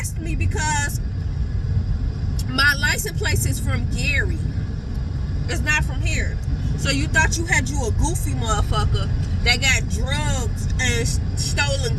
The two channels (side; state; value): both; identical; correlation 1.00